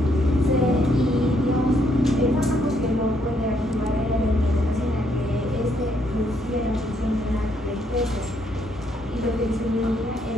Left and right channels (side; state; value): both; normal; correlation 0.72